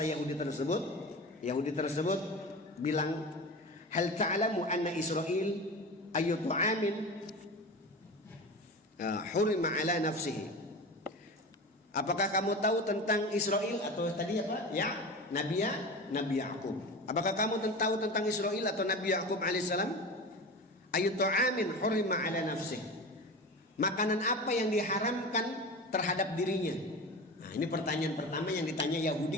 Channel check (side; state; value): both; normal; correlation 0.29